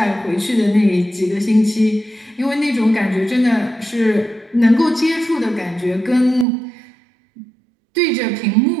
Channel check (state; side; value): drops out; left; at 6.5 s